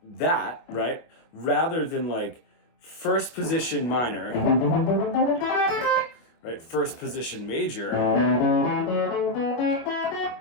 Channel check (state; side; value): late; right; 25 ms